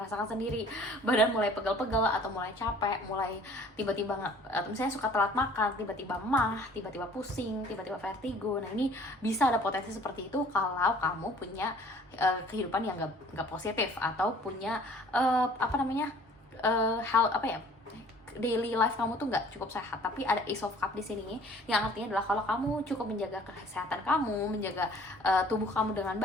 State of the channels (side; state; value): both; normal; correlation 0.52